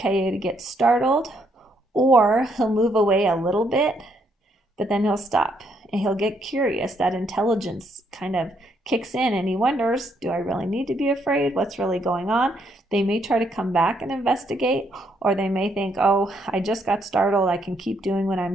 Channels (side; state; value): both; normal; correlation 0.73